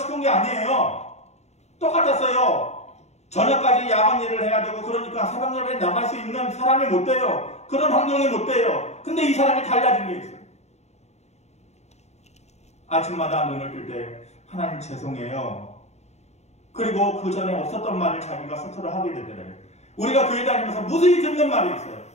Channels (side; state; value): right; late; 0.32 ms